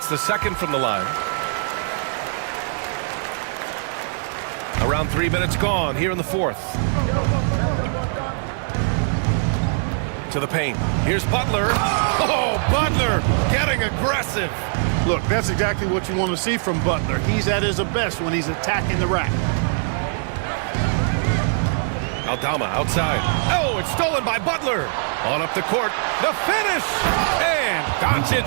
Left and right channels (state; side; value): silent; left; 64 dB below the other